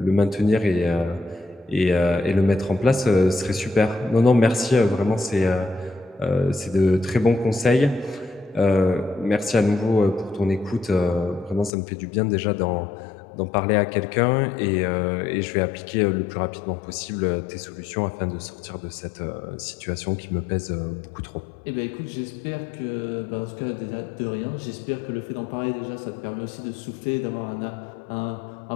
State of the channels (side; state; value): right; drops out; at 11.7 s